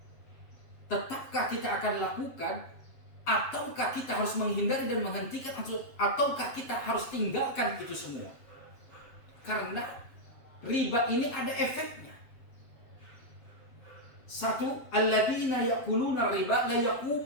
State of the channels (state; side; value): late; right; 7.5 ms